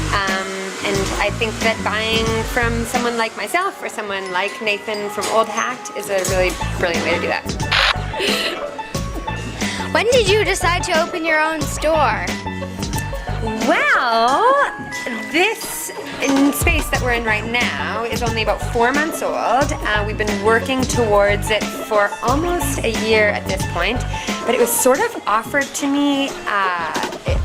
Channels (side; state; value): both; identical; correlation 1.00